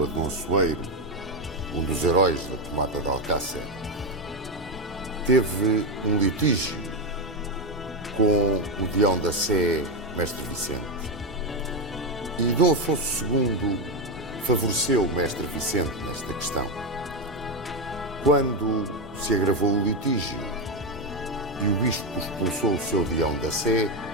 Dom Soeiro, um dos heróis da tomada de Alcácer, teve um litígio com o deão da Sé, Mestre Vicente. E Dom Afonso II favoreceu o Mestre Vicente nesta questão. Quando se agravou o litígio e o bispo expulsou o seu deão da Sé,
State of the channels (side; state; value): both; normal; correlation 0.09